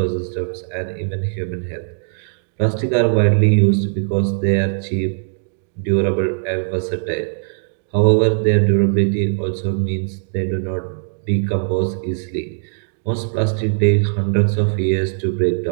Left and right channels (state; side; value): silent; left; digital silence